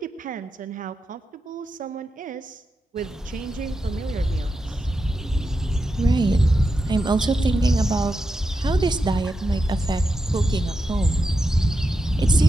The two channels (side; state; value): both; normal; correlation 0.88